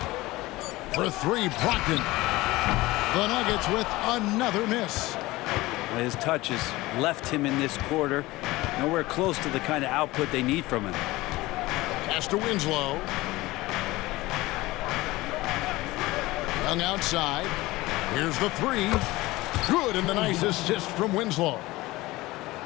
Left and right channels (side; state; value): right; quieter; 19.5 dB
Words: For 3, Brogdon. The Nuggets with another miss. His touch has left him in this quarter. Nowhere close to the kind of output they need from him. Pass to Winslow. Young outside. Here's the 3. Good, and the nice assist from Winslow.